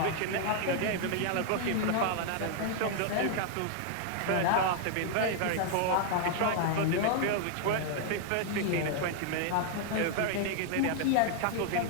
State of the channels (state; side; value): different; both; correlation 0.00